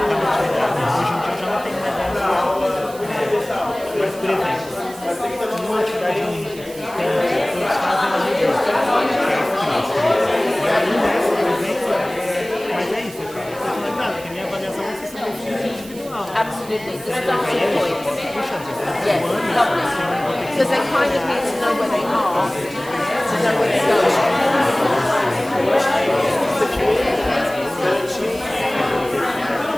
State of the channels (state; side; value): noise; right; hiss, 18 dB below the sound